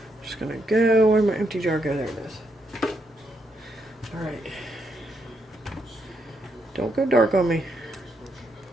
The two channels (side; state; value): both; normal; correlation 0.78